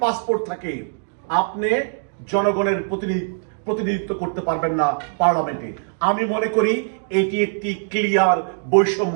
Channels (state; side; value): silent; left; digital silence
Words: পাসপোর্ট থাকে, আপনি জনগণের প্রতিনিধিত্ব করতে পারবেন না পার্লামেন্টে। আমি মনে করি এটি একটি ক্লিয়ার